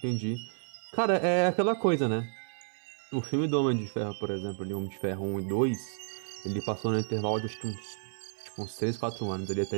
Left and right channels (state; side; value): silent; left; digital silence